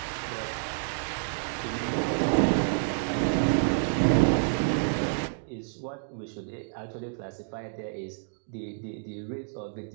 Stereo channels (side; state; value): left; silent; digital silence